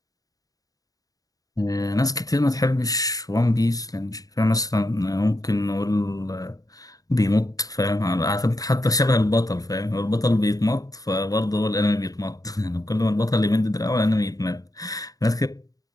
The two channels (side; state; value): right; late; 0.18 ms